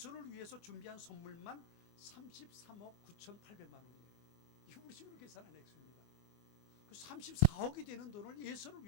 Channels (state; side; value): late; right; 24 ms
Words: 위해서 준비한 선물만 33억 9,800만 원이에요. 이거 우리 식으로 계산한 액수입니다. 그 34억이 되는 돈을 예수를